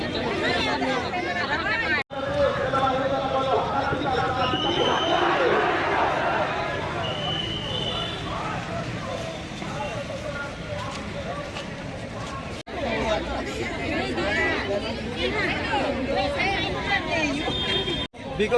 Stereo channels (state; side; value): identical; both; correlation 1.00